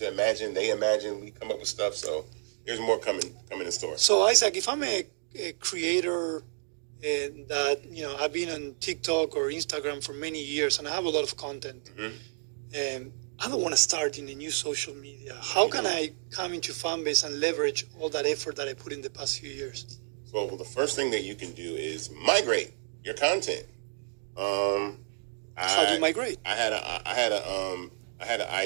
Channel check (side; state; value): left; silent; digital silence